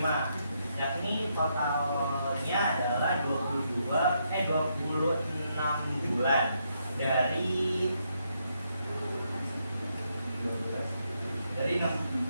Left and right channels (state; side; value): inverted; both; correlation -0.78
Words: Yakni totalnya adalah 26 bulan dari